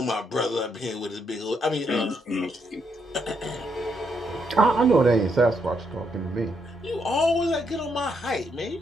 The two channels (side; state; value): both; normal; correlation 0.77